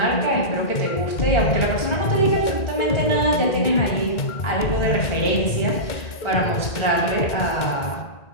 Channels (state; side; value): late; right; 1.9 ms